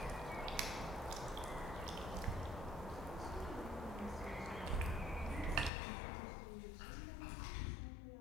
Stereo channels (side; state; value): right; drops out; at 5.7 s